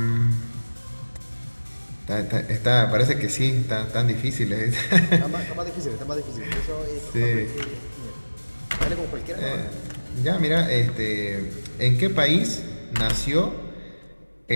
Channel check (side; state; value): both; inverted; correlation -1.00